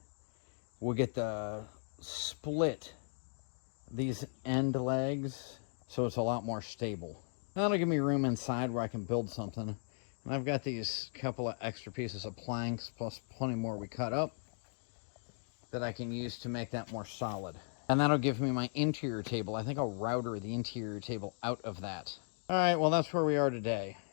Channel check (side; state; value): right; silent; digital silence